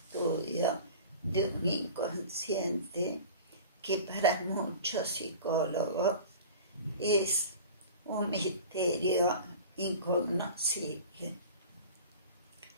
de un inconsciente que para muchos psicólogos es un misterio incognoscible.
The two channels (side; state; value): both; inverted; correlation -0.39